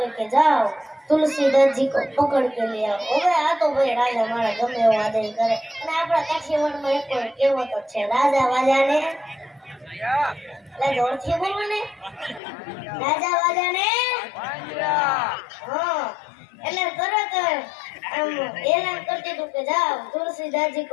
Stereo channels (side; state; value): right; drops out; at 12.4 s